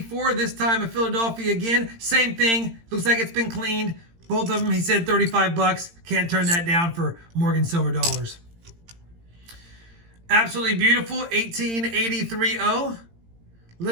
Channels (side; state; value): left; late; 18 ms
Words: this time a Philadelphia again. Same thing, looks like it's been cleaned. Both of them, he said 35 bucks. Can't turn that down for Morgan silver dollars. Absolutely beautiful, 1883O.